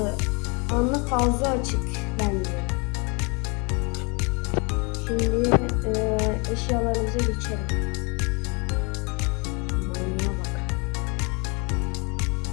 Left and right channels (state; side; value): quieter; right; 31.6 dB